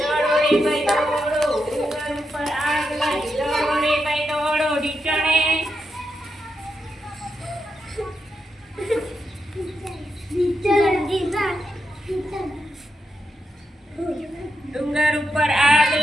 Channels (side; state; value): both; normal; correlation 0.85